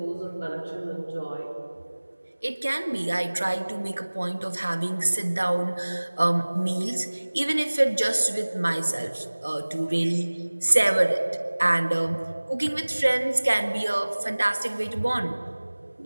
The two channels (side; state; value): both; inverted; correlation -1.00